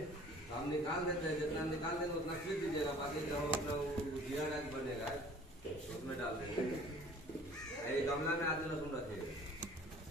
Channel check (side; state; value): both; normal; correlation 0.50